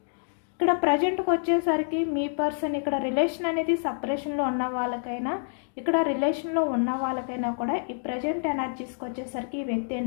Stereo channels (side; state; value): right; silent; digital silence